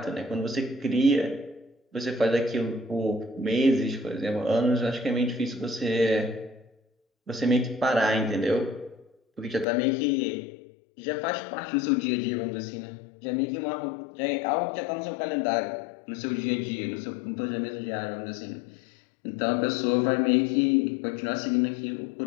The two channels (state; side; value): drops out; right; at 9.7 s